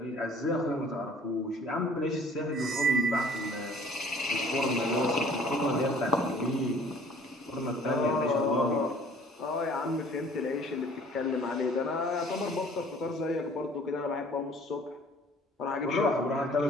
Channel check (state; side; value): normal; both; correlation 0.53